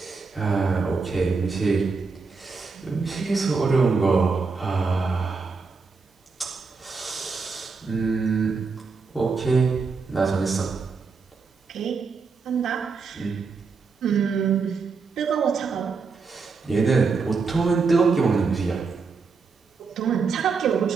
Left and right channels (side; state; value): left; quieter; 4.8 dB